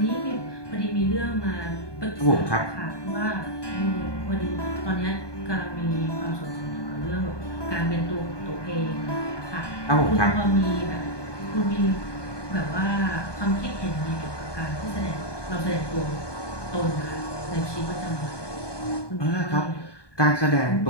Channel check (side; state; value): right; late; 1.2 ms